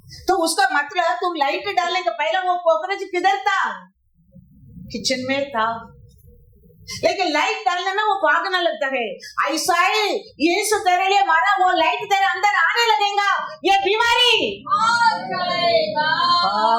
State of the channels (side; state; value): both; identical; correlation 1.00